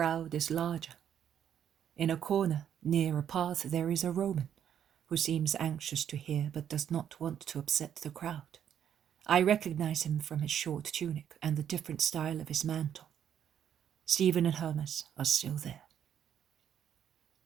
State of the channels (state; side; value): quieter; left; 9.3 dB